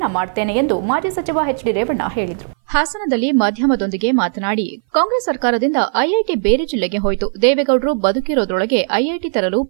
ಮಾಡ್ತೇನೆ ಎಂದು ಮಾಜಿ ಸಚಿವ ಎಚ್ಡಿ ರೇವಣ್ಣ ಹೇಳಿದರು. ಹಾಸನದಲ್ಲಿ ಮಾಧ್ಯಮದೊಂದಿಗೆ ಮಾತನಾಡಿ, ಕಾಂಗ್ರೆಸ್ ಸರ್ಕಾರದಿಂದ ಐಐಟಿ ಬೇರೆ ಜಿಲ್ಲೆಗೆ ಹೋಯಿತು. ದೇವೇಗೌಡರು ಬದುಕಿರೋದ್ರೊಳಗೆ ಐಐಟಿ ತರಲು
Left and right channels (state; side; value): silent; left; 60 dB below the other